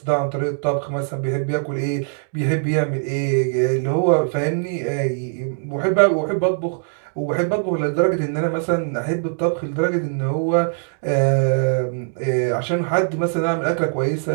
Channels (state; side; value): silent; left; digital silence